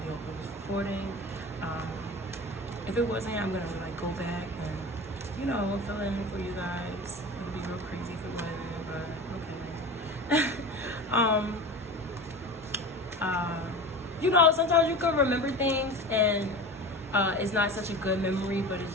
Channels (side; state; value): both; normal; correlation 0.32